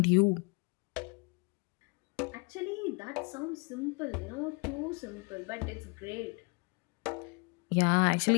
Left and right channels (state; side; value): quieter; right; 30.9 dB